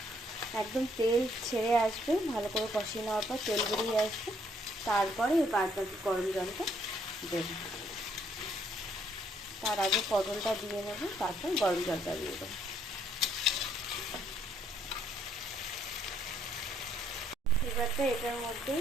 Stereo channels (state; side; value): normal; both; correlation 0.68